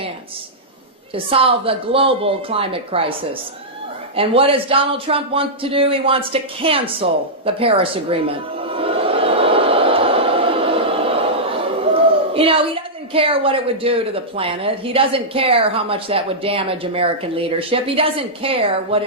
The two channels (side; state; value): both; normal; correlation -0.10